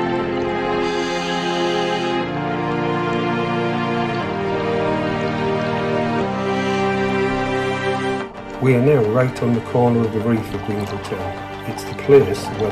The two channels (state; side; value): identical; both; correlation 1.00